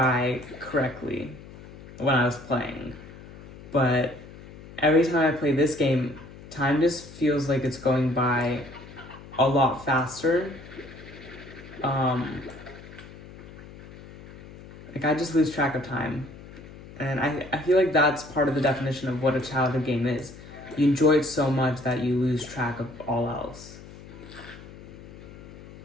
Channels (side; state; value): left; noise; hum, 17 dB below the sound